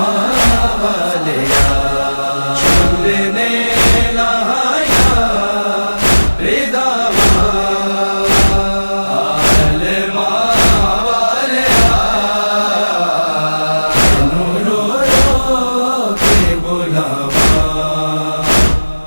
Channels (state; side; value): inverted; both; correlation -1.00